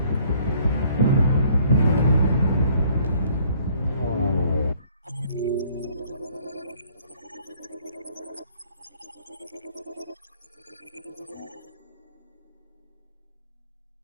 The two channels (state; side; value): inverted; both; correlation -0.60